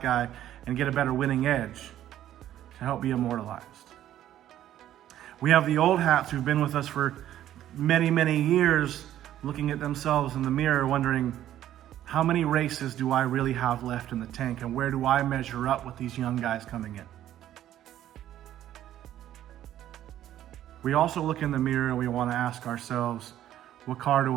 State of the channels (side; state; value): left; quieter; 12.1 dB